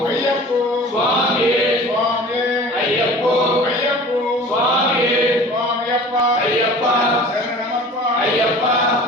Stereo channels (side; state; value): both; normal; correlation 0.43